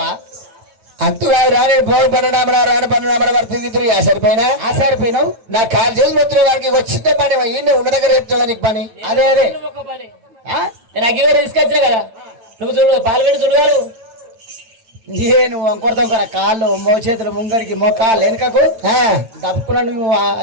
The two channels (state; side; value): late; left; 8.9 ms